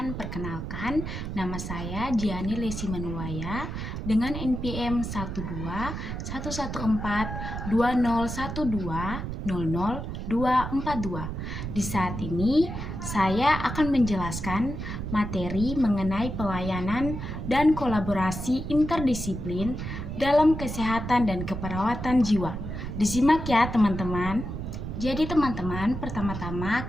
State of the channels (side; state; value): right; noise; rumble, 6 dB below the sound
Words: perkenalkan nama saya Diani Lesi Manuwaya dengan NPM 121142012000242. Di saat ini saya akan menjelaskan materi mengenai pelayanan dan kolaborasi interdisiplin dalam kesehatan dan keperawatan jiwa. Disimak ya teman-teman. Jadi teman-teman, pertama-tama